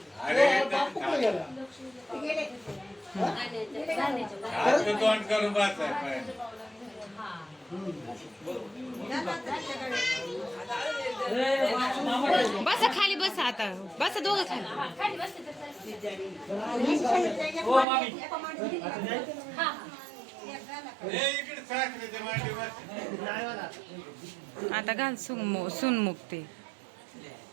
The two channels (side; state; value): left; drops out; at 17.9 s